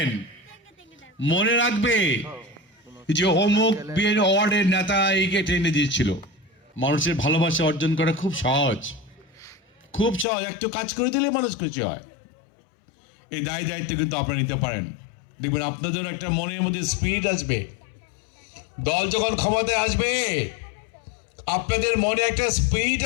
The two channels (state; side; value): drops out; right; at 10.2 s